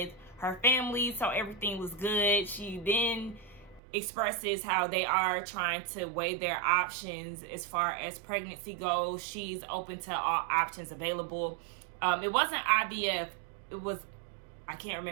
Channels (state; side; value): drops out; left; at 3.8 s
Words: her family, so everything was good. She then expresses how they are trying to weigh their options as far as pregnancy goes. She's open to all options available. It wasn't IVF. It was, I can't